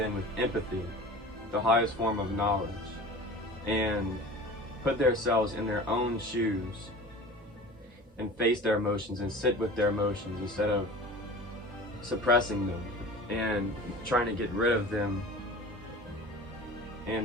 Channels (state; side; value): normal; both; correlation 0.38